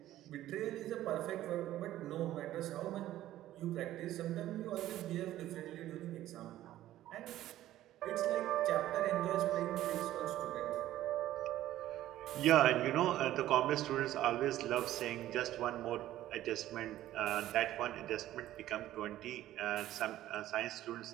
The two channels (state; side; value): quieter; left; 13.9 dB